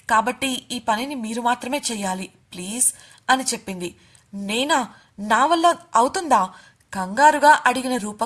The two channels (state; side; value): identical; both; correlation 1.00